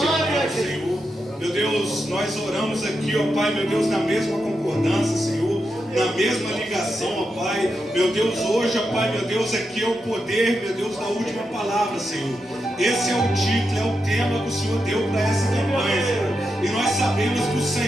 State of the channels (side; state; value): both; normal; correlation 0.86